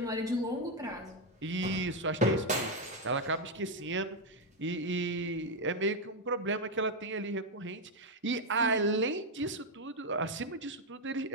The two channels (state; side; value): normal; both; correlation 0.03